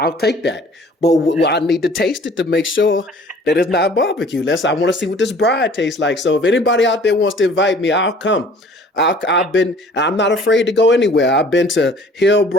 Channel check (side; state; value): both; normal; correlation 0.52